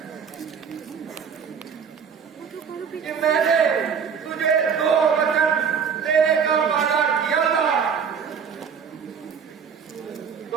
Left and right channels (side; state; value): left; quieter; 6.8 dB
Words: कि मैंने तुझे दो वचन देने का वादा किया था।